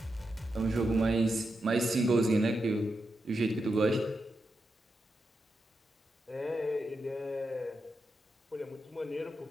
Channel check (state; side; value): normal; both; correlation 0.87